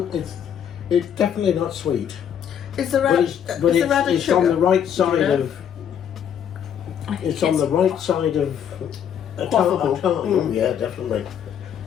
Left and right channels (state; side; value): quieter; right; 8.8 dB